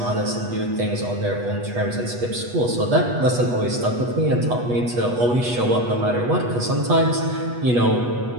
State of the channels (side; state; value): left; late; 8.2 ms